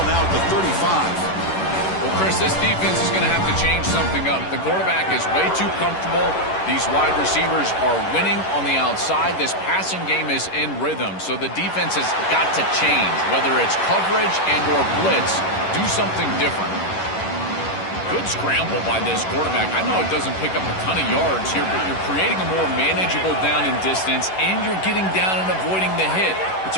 now at the 35. Well, Chris, this defense is going to have to change something up. The quarterback is way too comfortable. These wide receivers are winning on the outside. This passing game is in rhythm, so the defense has got to change. Whether it's coverage and or blitz, do something different. Good scramble by this quarterback. I know it doesn't pick up a ton of yards here, but you're creating a more manageable down and distance, and you're getting down and avoiding the hit. It's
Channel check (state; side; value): late; right; 11 ms